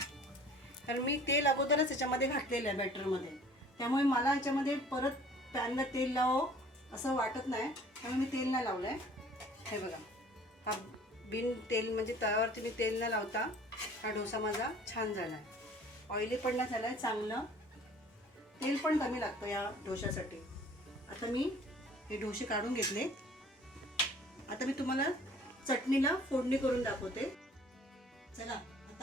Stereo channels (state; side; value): normal; both; correlation 0.51